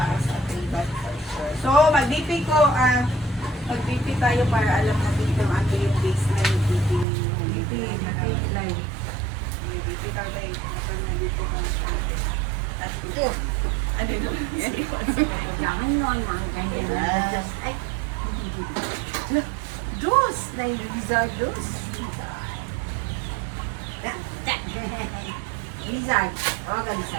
ating blood pressure. So, mag-BP tayo para alam natin kung ano yung baseline ng BP ninyo. BP Live. BP tayo. Nandito kung at Ito. ano yun? Jangan nun, mga ganyan. Just, ay. Dos. Dahil Rizal dos. Rizal. Tawagan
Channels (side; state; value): left; drops out; at 7.1 s